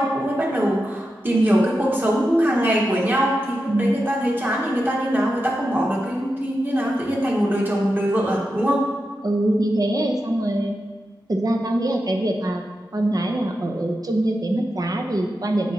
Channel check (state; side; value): normal; both; correlation 0.89